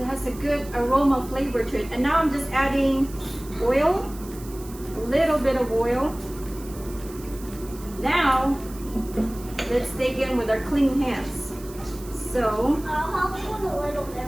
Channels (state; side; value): noise; right; hiss, 18 dB below the sound